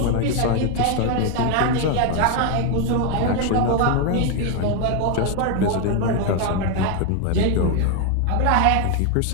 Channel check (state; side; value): different; both; correlation 0.01